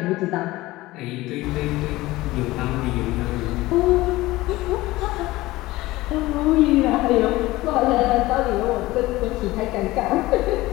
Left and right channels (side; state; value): right; quieter; 18.6 dB